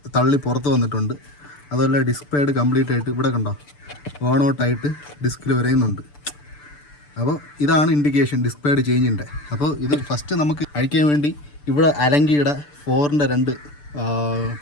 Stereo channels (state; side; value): late; right; 6.8 ms